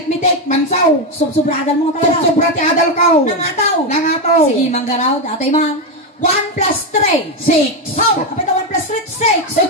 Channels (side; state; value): both; normal; correlation 0.08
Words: mansaw. Subsubradan mo talaga. Sobra ti adal ko. Nangataw. Sige, manggaraw. Atay man. 1 plus 3. 6. How? Kapit na 1 plus 3, 6.